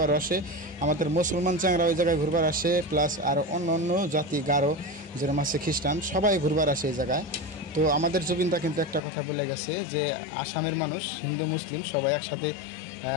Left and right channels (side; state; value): right; drops out; at 9.0 s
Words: আসে। আমাদের মুসলমান চাংরা ওই জায়গায় ঘুরবার আসে, প্লাস আর অন্য অন্য জাতি গারো যেরকম আছে, খ্রিস্টান, সবাই ঘুরবার আসে এই জায়গায়। তো আমাদের জুবিনদা কিন্তু একটা কথা বলে গেছে যে আসামের মানুষ হিন্দু মুসলিম সবাই একসাথে